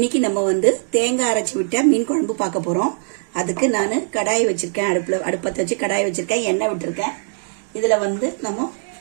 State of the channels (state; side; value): silent; left; digital silence